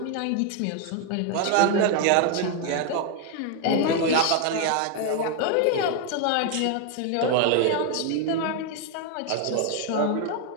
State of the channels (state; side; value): different; both; correlation 0.01